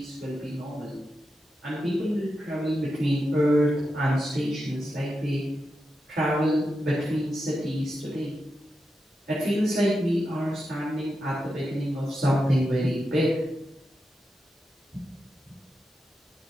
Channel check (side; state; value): both; normal; correlation 0.88